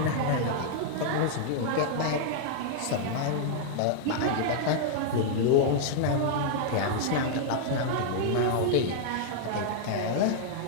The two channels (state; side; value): different; both; correlation -0.01